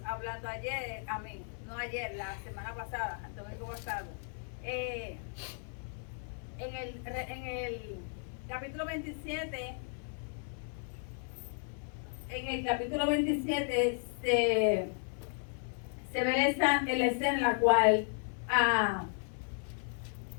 hablando ayer, no ayer, la semana pasada, el domingo pasado. En el capítulo 27, se ve la escena en la cual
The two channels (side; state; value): right; silent; 55 dB below the other